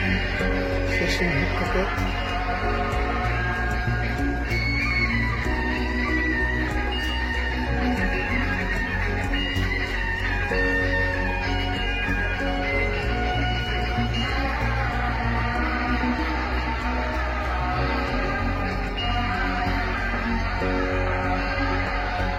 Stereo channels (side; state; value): both; identical; correlation 1.00